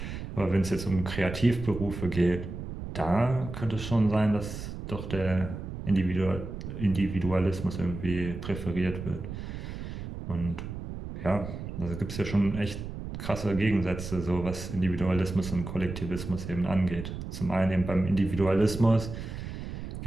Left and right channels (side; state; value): right; noise; rumble, 8 dB below the sound